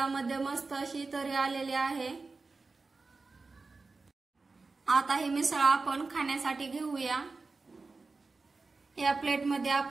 मस्त अशी तरी आलेली आहे। आता ही मिसळ आपण खाण्यासाठी घेऊया। या प्लेटमध्ये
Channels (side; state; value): left; quieter; 3.9 dB